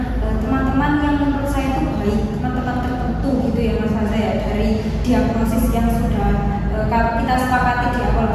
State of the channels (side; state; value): both; identical; correlation 1.00